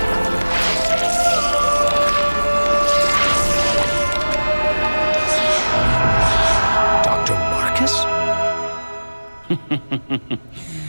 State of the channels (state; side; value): inverted; both; correlation -1.00